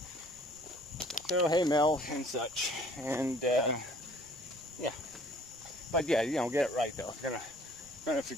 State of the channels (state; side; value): noise; right; rumble, 25 dB below the sound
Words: So, hey, Mel, and such. And, yeah. But, yeah, you know, get it right, though. If